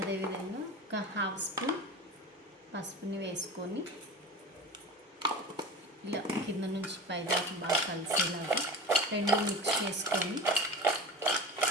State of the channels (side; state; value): both; normal; correlation 0.32